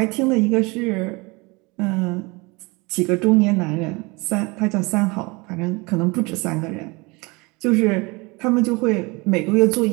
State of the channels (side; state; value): left; quieter; 26.1 dB